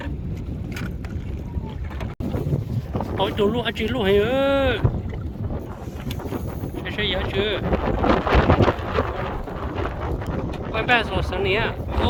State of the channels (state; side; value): identical; both; correlation 1.00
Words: ôi tụi luôn anh chị luôn hay ơi chơi giá chưa quay bé rồi Sunny à